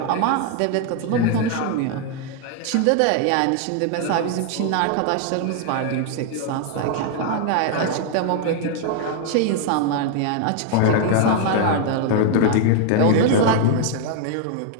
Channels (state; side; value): different; both; correlation 0.00